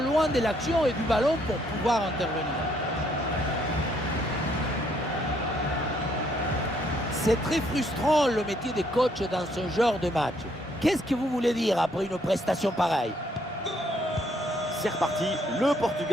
de l'action et du ballon pour pouvoir intervenir. C'est très frustrant le métier de coach dans ce genre de match. Qu'est-ce que vous voulez dire après une prestation pareille? C'est reparti, le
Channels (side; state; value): both; normal; correlation 0.69